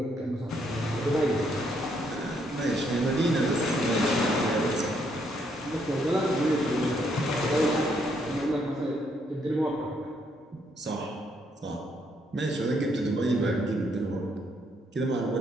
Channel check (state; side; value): normal; both; correlation 0.73